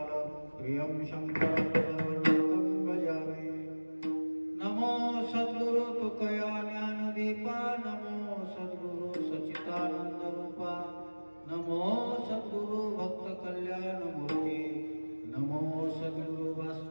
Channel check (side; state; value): both; inverted; correlation -1.00